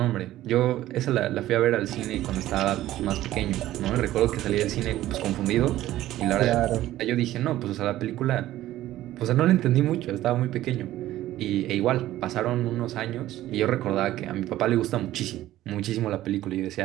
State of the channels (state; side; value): quieter; left; 14.6 dB